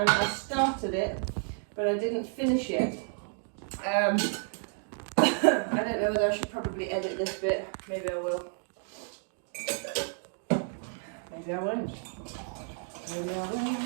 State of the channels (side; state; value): left; silent; 57 dB below the other